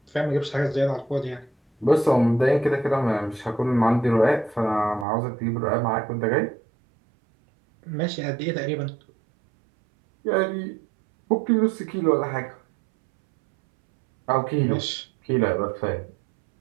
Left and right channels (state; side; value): drops out; left; at 5.1 s